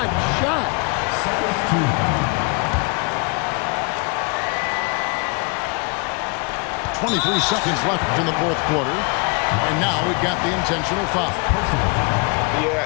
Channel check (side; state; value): right; quieter; 31.7 dB